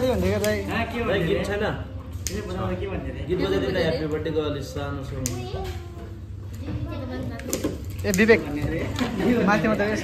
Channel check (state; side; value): identical; both; correlation 1.00